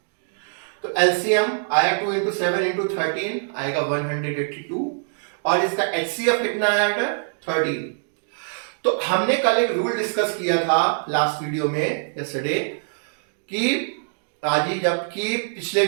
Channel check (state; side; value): silent; left; digital silence